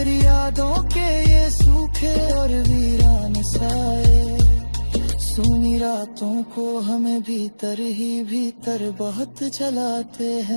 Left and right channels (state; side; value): inverted; both; correlation -1.00